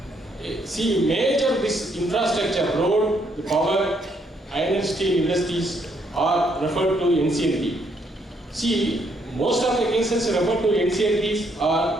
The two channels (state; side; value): normal; both; correlation 0.72